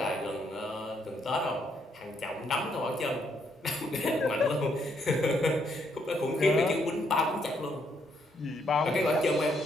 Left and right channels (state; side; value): normal; both; correlation 0.73